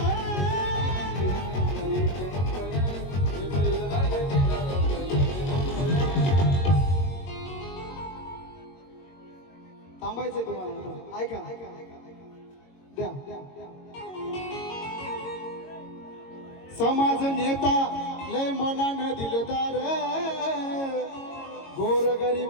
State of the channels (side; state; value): right; late; 22 ms